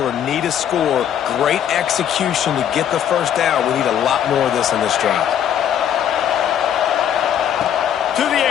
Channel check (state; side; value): quieter; right; 9.6 dB